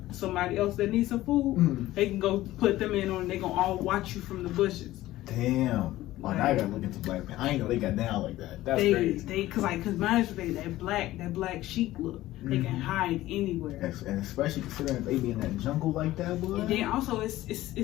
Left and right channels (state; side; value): quieter; right; 15.9 dB